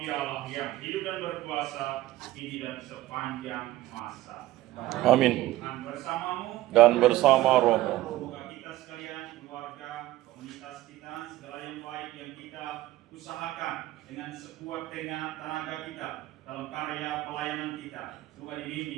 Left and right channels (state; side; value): quieter; left; 16.3 dB